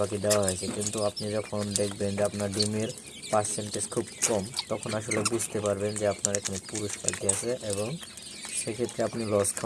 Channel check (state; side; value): identical; both; correlation 1.00